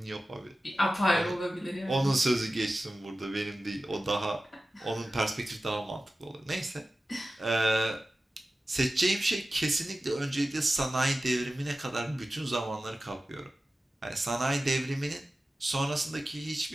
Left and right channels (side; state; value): both; normal; correlation 0.95